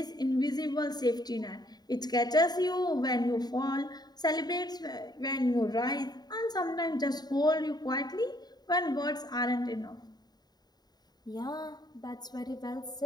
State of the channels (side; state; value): right; late; 0.20 ms